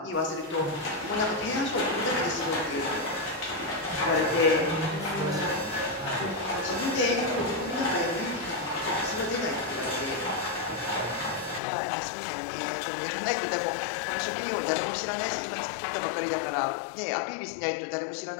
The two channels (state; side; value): drops out; right; at 11.6 s